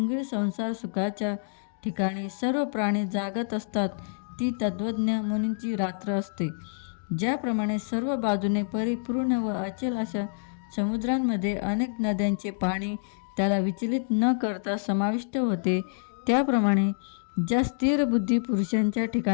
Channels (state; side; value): silent; right; digital silence